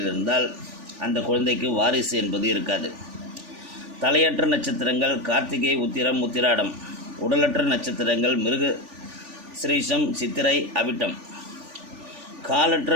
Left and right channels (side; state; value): left; late; 3.4 ms